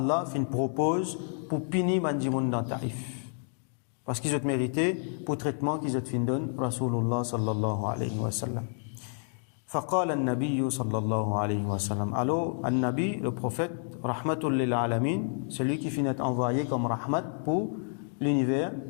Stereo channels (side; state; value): right; silent; 55 dB below the other